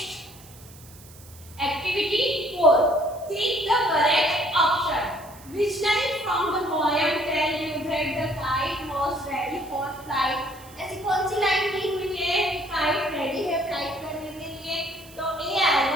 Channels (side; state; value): right; noise; hiss, 21 dB below the sound